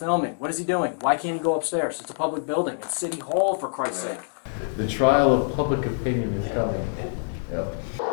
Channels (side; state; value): right; silent; digital silence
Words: What is he doing? Why can't he go upstairs? It's a public building. It's City Hall, for Christ's sake. The trial of public opinion is coming. Yep.